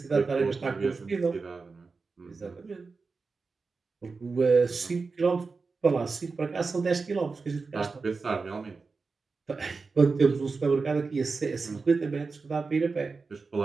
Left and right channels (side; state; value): left; quieter; 4.4 dB